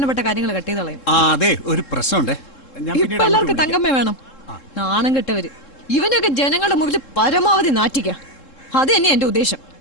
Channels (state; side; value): late; right; 3.7 ms